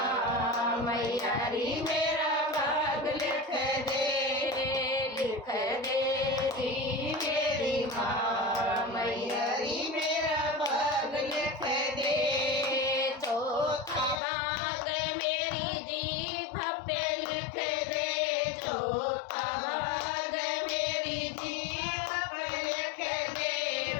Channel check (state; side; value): drops out; right; at 14.2 s